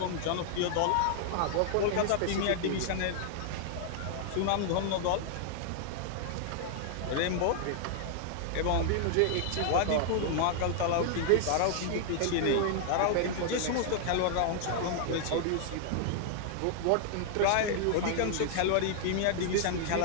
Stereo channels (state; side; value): different; both; correlation 0.00